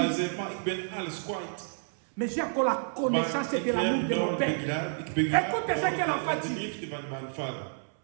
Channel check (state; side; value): silent; left; 58 dB below the other